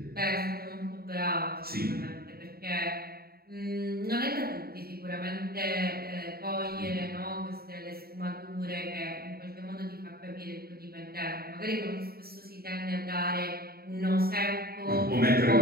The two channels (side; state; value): left; late; 0.45 ms